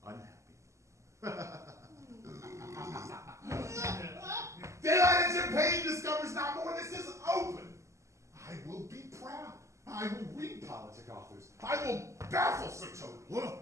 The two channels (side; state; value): left; late; 0.14 ms